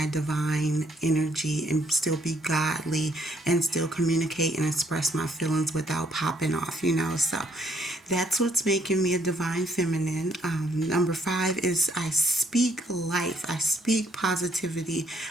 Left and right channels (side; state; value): both; normal; correlation 0.68